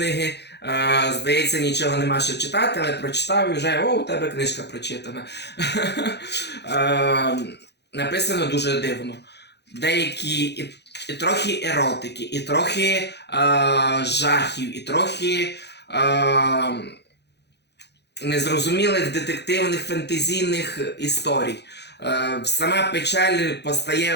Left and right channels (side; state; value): right; late; 0.49 ms